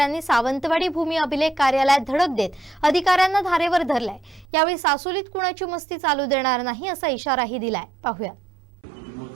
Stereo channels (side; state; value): left; drops out; at 4.5 s